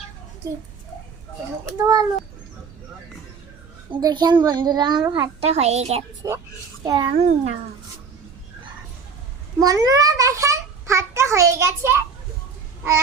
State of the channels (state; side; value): quieter; left; 5.5 dB